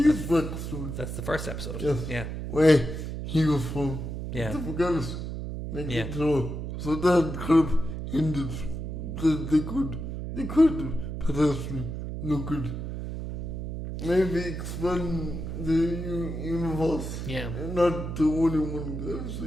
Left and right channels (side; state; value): right; noise; hum, 5 dB below the sound